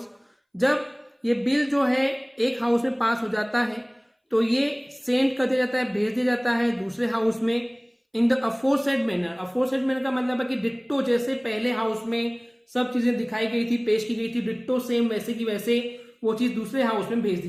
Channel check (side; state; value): both; identical; correlation 1.00